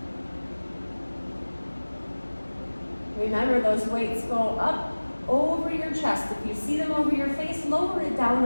Remember, those weights go up over your chest. If you see them over your face, lower it down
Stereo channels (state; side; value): inverted; both; correlation -1.00